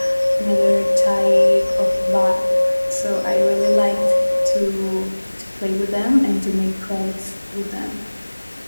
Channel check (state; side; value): inverted; both; correlation -1.00